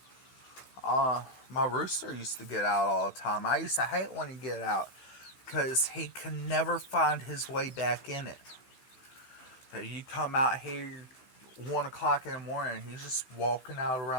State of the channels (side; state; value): right; late; 15 ms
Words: My rooster used to get out all the time. I used to hate when he'd get out, because he can never find his way back in it. You come out here 1 o'clock in the morning, he's just walking out